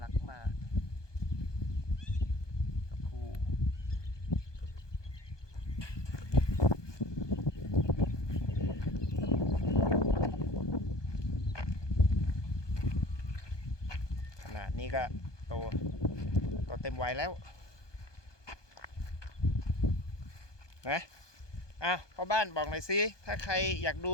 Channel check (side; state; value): right; late; 1.2 ms